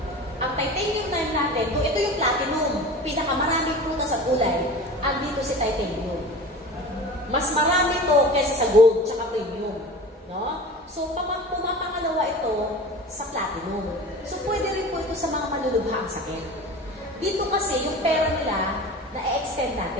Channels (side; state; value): both; normal; correlation 0.36